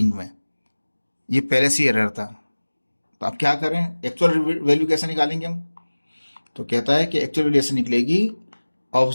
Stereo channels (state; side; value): inverted; both; correlation -1.00